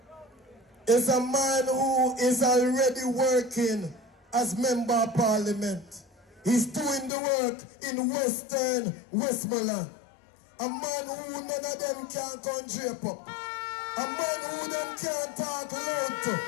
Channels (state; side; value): drops out; right; at 7.1 s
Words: is a man who is already working as Member of Parliament. He's doing the work in Western Westmoreland. A man who none of them can come drape up. A man who them can't talk loud to.